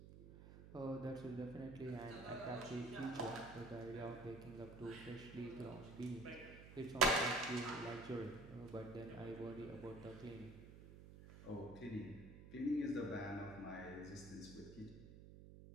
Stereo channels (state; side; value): noise; right; hum, 14 dB below the sound